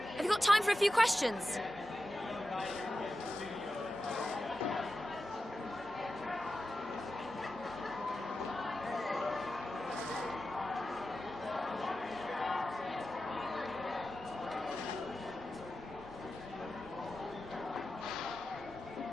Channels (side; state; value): both; normal; correlation 0.92